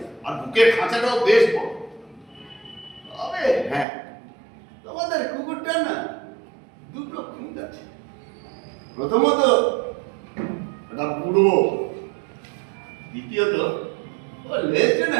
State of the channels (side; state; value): left; drops out; at 3.9 s